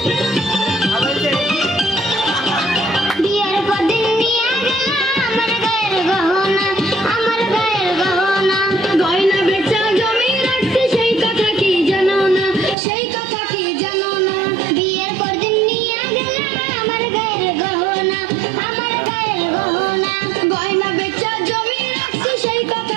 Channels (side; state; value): left; drops out; at 12.8 s